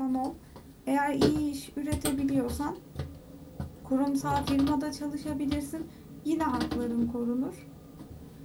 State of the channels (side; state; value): both; identical; correlation 1.00